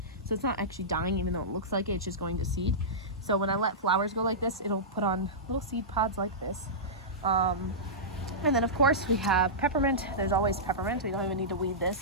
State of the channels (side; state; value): both; normal; correlation -0.16